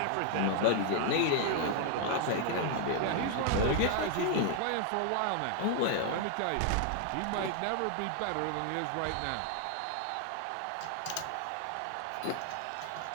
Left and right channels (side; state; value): both; different; correlation 0.00